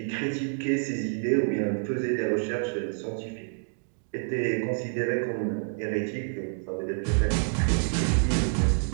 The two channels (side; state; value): left; silent; 59 dB below the other